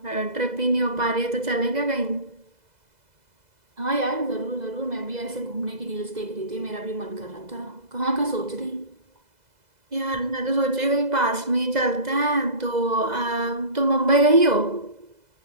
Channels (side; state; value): left; late; 2.0 ms